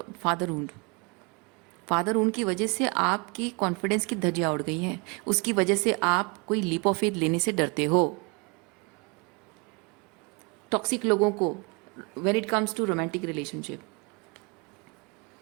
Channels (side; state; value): left; quieter; 31.0 dB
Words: fatherhood. Fatherhood की वजह से आपकी कॉन्फिडेंस की धज्जियाँ उड़ गई हैं, उसकी वजह से आप कोई लीप ऑफ फेथ लेने से डरते हो। टॉक्सिक लोगों को, when it comes to romantic relationship,